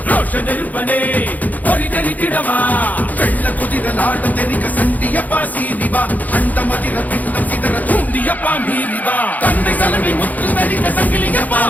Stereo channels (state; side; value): late; right; 0.080 ms